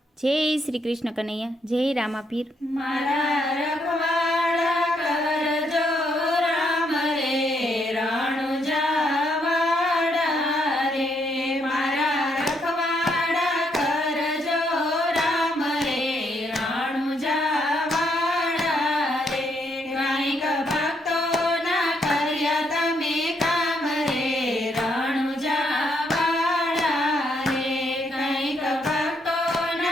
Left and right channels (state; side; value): normal; both; correlation 0.74